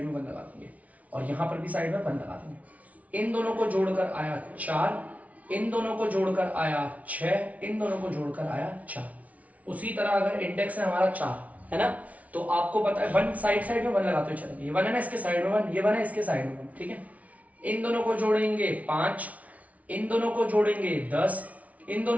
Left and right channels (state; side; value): late; left; 0.069 ms